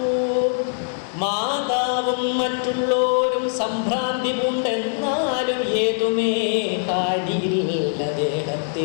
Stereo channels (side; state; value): right; silent; digital silence